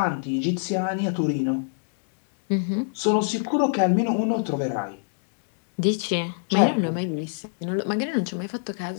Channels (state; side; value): silent; right; digital silence